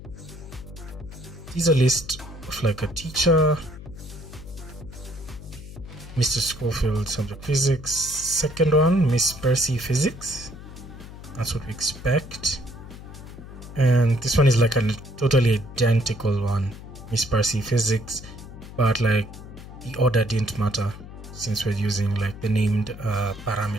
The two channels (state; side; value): noise; left; hum, 14 dB below the sound